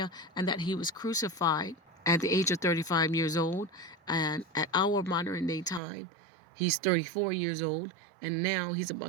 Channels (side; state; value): left; drops out; at 5.8 s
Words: and that he was crucified at the age of 35 years old. And at our modern day time, he's 34 years old, and now he's